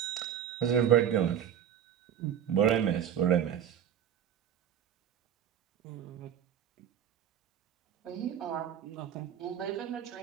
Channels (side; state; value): left; quieter; 9.3 dB